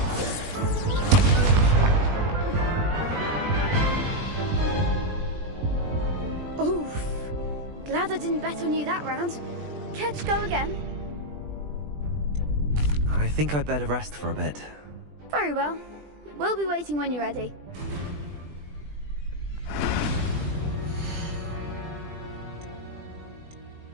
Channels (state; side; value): late; left; 20 ms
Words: Oof. Glad I didn't bet on you that round. Care to go again? I think I'd better rest for a bit. Very well. We'll be waiting when you're ready.